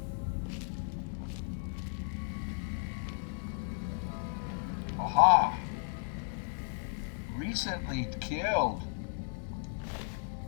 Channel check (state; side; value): silent; right; 55 dB below the other